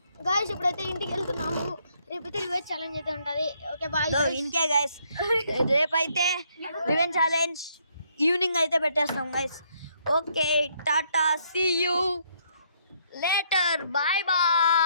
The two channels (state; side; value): inverted; both; correlation -0.70